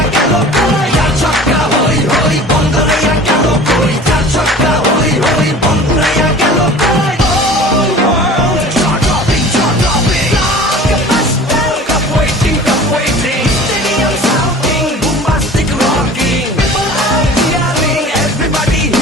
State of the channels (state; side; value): normal; both; correlation 0.42